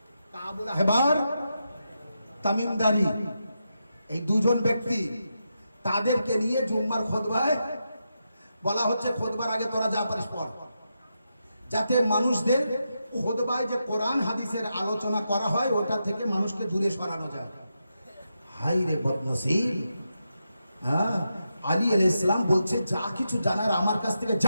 কাবুল আহবার, তামিমদারি, এই দুজন ব্যক্তি, তাদেরকে নিয়ে জুম্মার খুতবায় বলা হচ্ছে খুতবার আগে তোরা যা পারিস পড়, যাতে মানুষদের খুতবায় যে কোরআন হাদিসের আলোচনা করা হয় ওটা থেকে মানুষকে দূরে সরানো যায়। হাই রে বদনসিব! হ্যাঁ, আলী আলাইহিস সালাম বলছে যা কিছু জানার আমার কাছ থেকে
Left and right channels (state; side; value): inverted; both; correlation -0.86